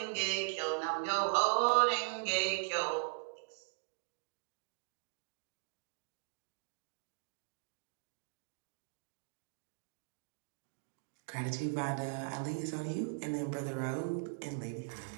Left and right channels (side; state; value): left; silent; digital silence